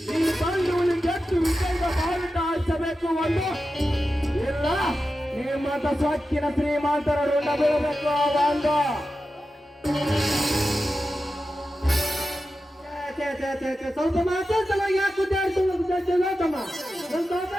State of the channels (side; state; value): both; normal; correlation 0.92